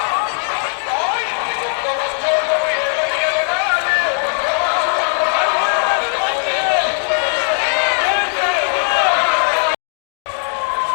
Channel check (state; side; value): silent; right; 63 dB below the other